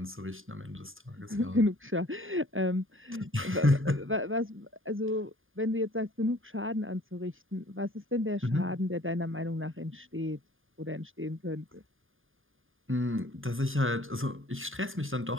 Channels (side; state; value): left; late; 0.59 ms